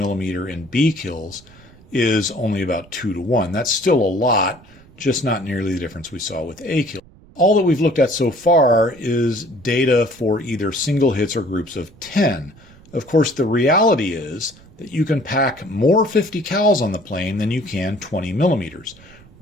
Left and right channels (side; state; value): right; noise; rumble, 24 dB below the sound